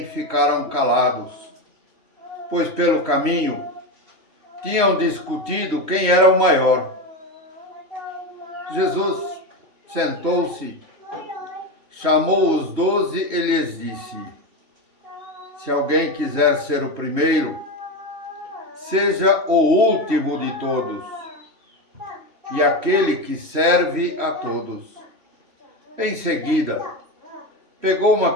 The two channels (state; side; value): late; left; 3.1 ms